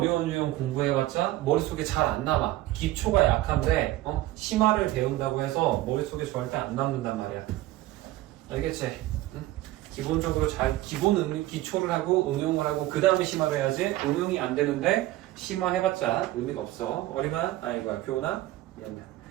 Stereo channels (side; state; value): left; quieter; 16.3 dB